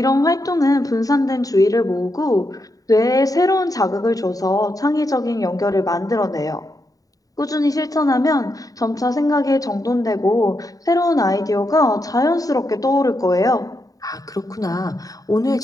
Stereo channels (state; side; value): late; right; 0.18 ms